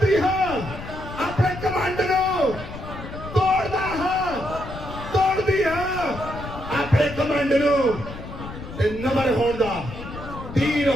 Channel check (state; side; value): noise; left; rumble, 11 dB below the sound